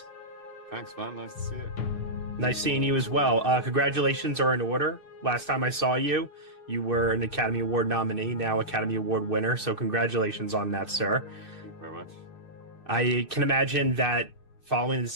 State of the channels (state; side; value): late; right; 6.5 ms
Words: Thanks, man. Nice to see you. Nice seeing you as well. Congratulations are in order. Last time I saw you, you were an Academy Award nominee, now Academy Award winner, so congratulations on that, sir. Thank you very much. I can imagine that following the